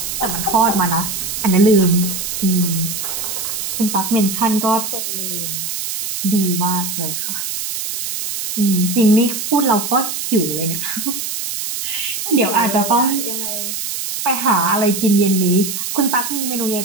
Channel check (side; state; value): right; noise; hiss, 4 dB below the sound